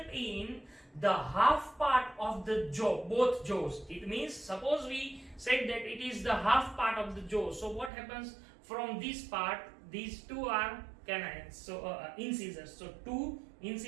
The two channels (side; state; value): left; drops out; at 7.9 s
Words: in the half part of the jaw, both jaws. It means, suppose we said that it is the half part of the jaw. So what happens from this part? These two are canines, so incisors. So 2